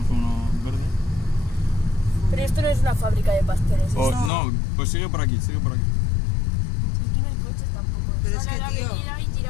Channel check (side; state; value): right; drops out; at 4.3 s